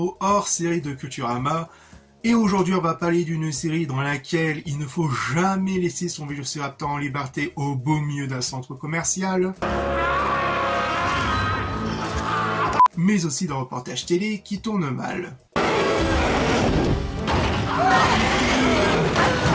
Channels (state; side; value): identical; both; correlation 1.00